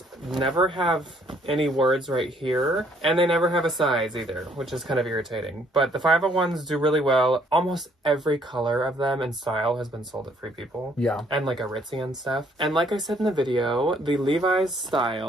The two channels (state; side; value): normal; both; correlation 0.64